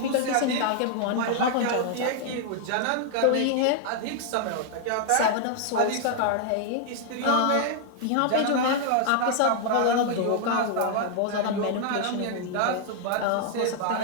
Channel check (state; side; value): different; both; correlation 0.00